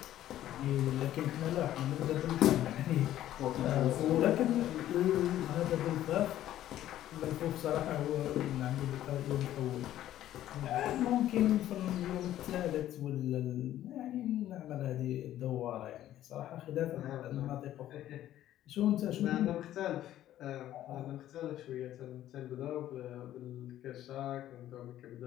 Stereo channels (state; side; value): quieter; right; 12.8 dB